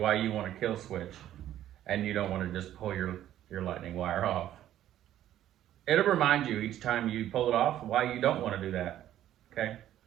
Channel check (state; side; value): quieter; left; 12.2 dB